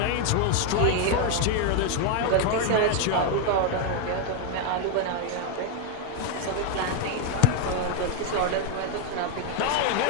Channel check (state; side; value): different; both; correlation 0.01